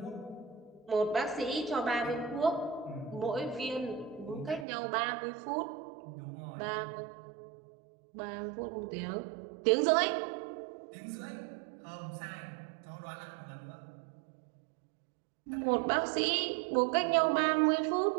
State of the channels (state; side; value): drops out; left; at 4.7 s